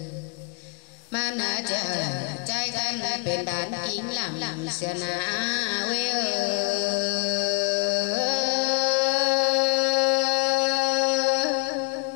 mà nà chờ trai khăn bên đàn kín làm xưa nà quê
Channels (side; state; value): right; quieter; 30.3 dB